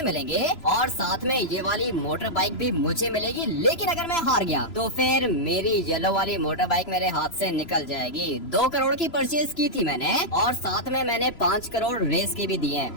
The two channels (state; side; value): late; right; 3.0 ms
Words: मिलेंगे और साथ में ये वाली मोटर बाइक भी मुझे मिलेगी। लेकिन अगर मैं हार गया तो फिर मेरी येलो वाली मोटर बाइक मेरे हाथ से निकल जाएगी। 2 करोड़ की परचेज की थी मैंने और साथ में मैंने 5 करोड़ रेस के भी दिए।